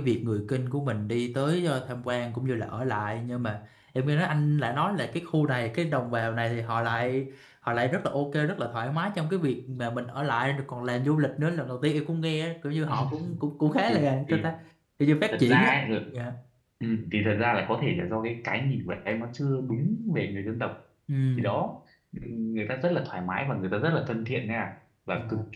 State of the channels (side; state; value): both; identical; correlation 1.00